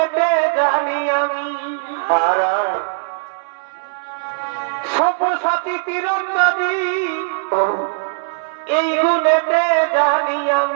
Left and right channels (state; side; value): silent; left; digital silence